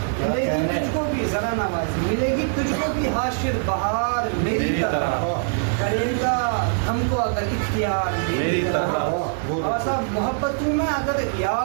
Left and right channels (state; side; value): silent; left; digital silence